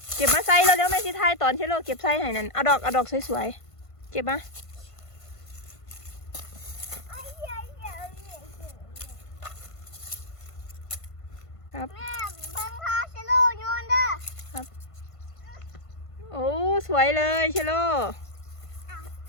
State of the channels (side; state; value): right; late; 1.5 ms